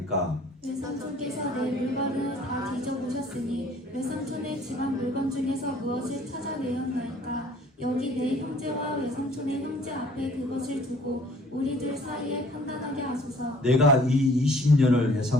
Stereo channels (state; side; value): normal; both; correlation 0.55